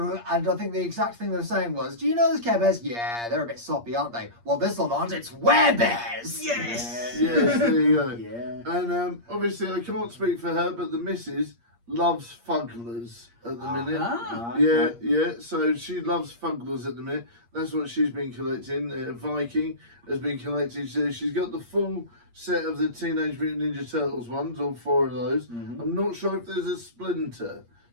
and I think the exact thing they were saying was, "Do you know those Care Bears? Yeah, they're a bit soppy, aren't they? Well, this one aren't. It's Werebears." Yes. Yes, there you go. Yeah. And obviously, I can't speak for her, but the missus loves fugglers at the minute. Ah. Yeah. So she loves fugglers at the minute. That's what she's been collecting. Viking has been collecting. So she's got the full set of the Teenage Mutant Ninja Turtles ones, all 4 of those. I'm not sure if there's a Splinter,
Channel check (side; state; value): left; late; 8.5 ms